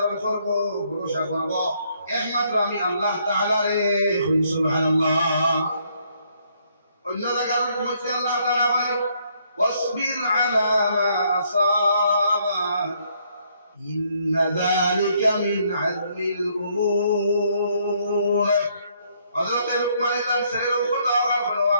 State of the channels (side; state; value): both; inverted; correlation -0.70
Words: করব, ভরসা করব একমাত্র আমি আল্লাহ তাআলা রে। সুবহানাল্লাহ। অন্য জায়গার মধ্যে আল্লাহ তাআলা বলেন, ওয়াসবির আলা মা আসাবা ইন্না যালিকা মিন আযমিল উমুর। হযরত লুকমান তার ছেলের উপর দোয়া করলো,